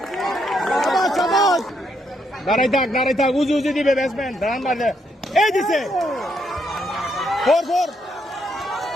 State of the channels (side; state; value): both; normal; correlation 0.76